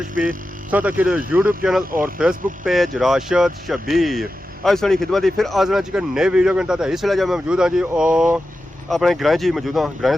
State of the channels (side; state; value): both; normal; correlation 0.92